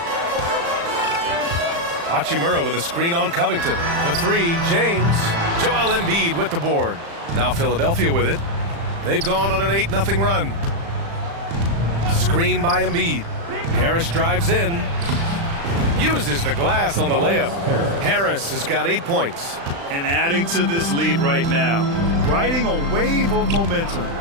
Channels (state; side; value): late; left; 35 ms